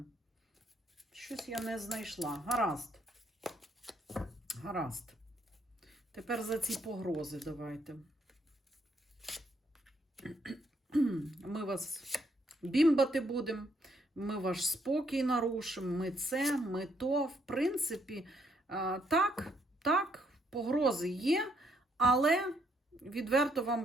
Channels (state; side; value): normal; both; correlation 0.71